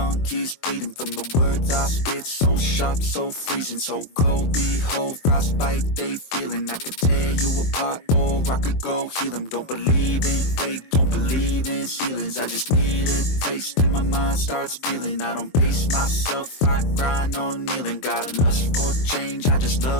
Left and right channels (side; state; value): right; late; 23 ms